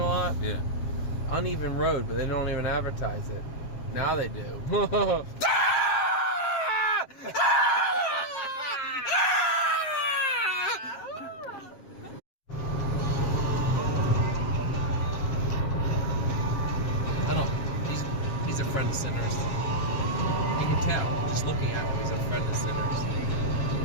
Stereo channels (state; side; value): late; right; 7.4 ms